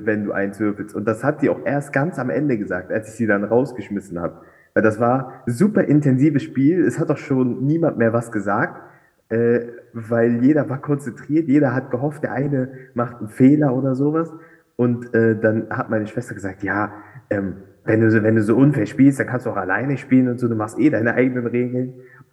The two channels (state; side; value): identical; both; correlation 1.00